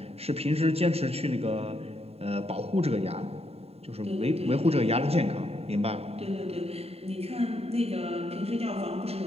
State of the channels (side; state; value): left; late; 0.29 ms